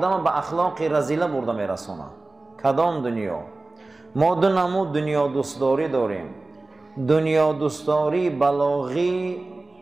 به اخلاق رذیله برده میرسونه. کدام دنیا؟ ما دو نمود دنیا دوستداری داریم: دنیا دوستداری بلاغی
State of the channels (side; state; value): left; quieter; 3.2 dB